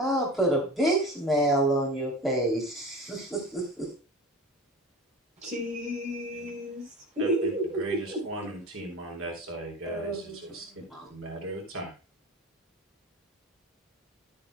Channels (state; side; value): normal; both; correlation 0.33